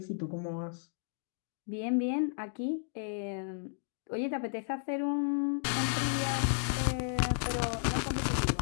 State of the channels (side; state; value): right; silent; digital silence